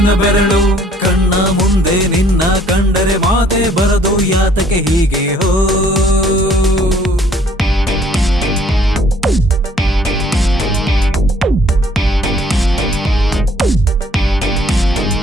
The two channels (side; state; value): both; normal; correlation 0.60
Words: ಬೆರಳು ಕಣ್ಣ ಮುಂದೆ ನಿನ್ನ ಕಂಡರೆ ಮಾತೆ ಬರದು ಯಾತಕ್ಕೆ ಹೀಗೆ ಹೋ